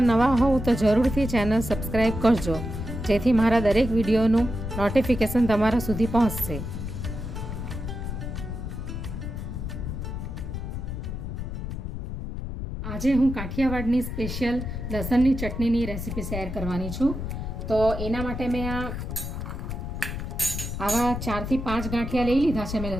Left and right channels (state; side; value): noise; left; rumble, 5 dB below the sound